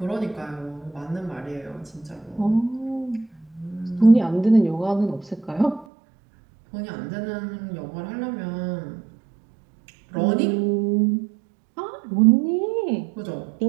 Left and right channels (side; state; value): left; drops out; at 5.9 s